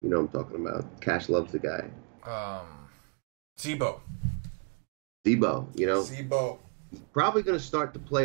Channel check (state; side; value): quieter; left; 36.7 dB